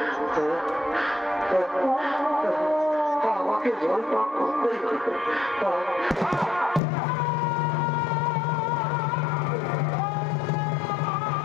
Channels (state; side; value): drops out; right; at 6.8 s